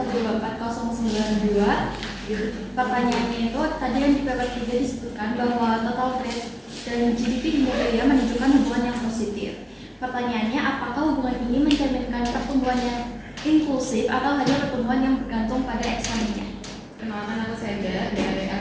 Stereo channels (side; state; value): both; identical; correlation 1.00